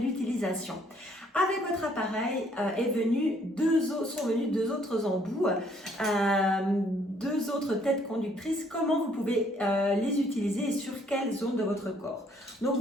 Avec votre appareil sont venus deux autres embouts, deux autres têtes conductrices. Comment vous pouvez les utiliser et sur quelle zone de votre corps? Donc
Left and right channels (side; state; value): both; normal; correlation 0.65